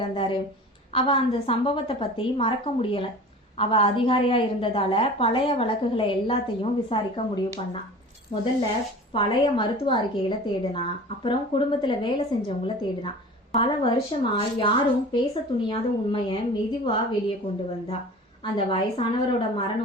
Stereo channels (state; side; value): normal; both; correlation 0.39